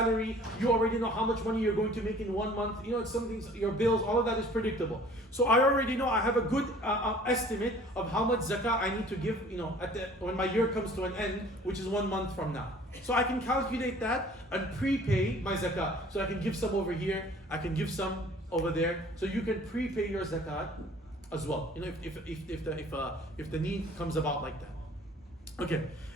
you already know how much money you're going to make in 1 month. It's something, your bills, all of that is predictable. So I already know, I have a good estimate of how much zakah I need to give, when my year comes to an end, which is 1 month from now. So I can calculate that and prepay my zakah. So I can give some over here, I can give some over there. So you can prepay your zakat as well. If the need comes about like that. Okay.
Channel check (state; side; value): normal; both; correlation 0.51